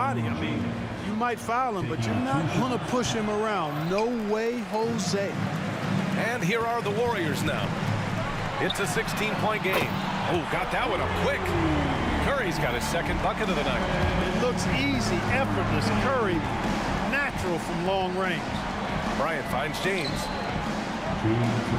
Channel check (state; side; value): identical; both; correlation 1.00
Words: I mean, you might foul him, but you're not going to push him around. No way, Jose. And here are the Warriors now. It's a 16-point game. Oh, got that one up quick. Curry's got his second bucket of the night. It looks easy, effortless. Curry, natural from long range. Bryant finds James. 2 minutes